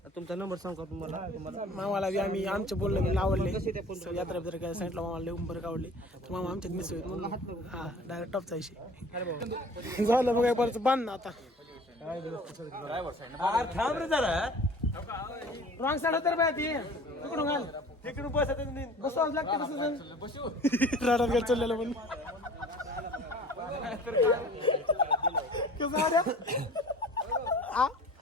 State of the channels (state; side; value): normal; both; correlation 0.46